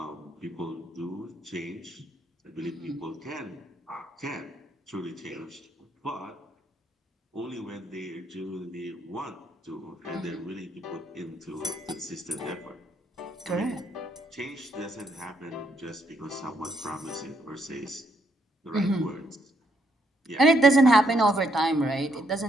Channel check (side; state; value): both; normal; correlation 0.74